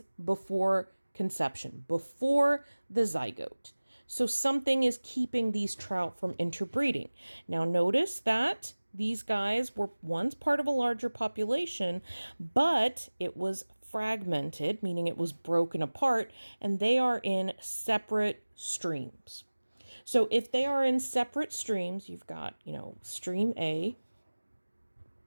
before conception, before the zygote. So something is keeping these trout from interbreeding. Now notice that these guys were once part of a larger population, but it was fragmented, meaning it was broken apart, and they are in separate streams. So if they are in separate streams, you've got, stream A,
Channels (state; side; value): inverted; both; correlation -1.00